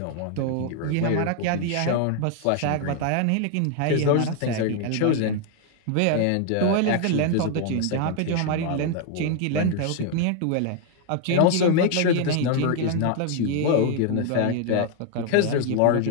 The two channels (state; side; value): different; both; correlation 0.00